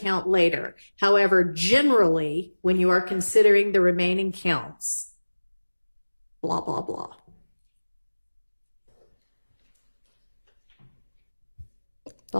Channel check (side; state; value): both; inverted; correlation -1.00